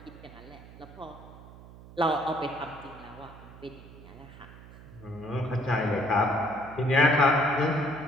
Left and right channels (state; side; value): noise; right; hum, 18 dB below the sound